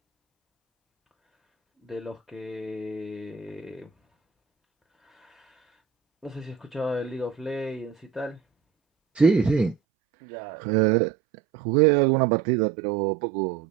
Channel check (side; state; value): left; drops out; at 9.8 s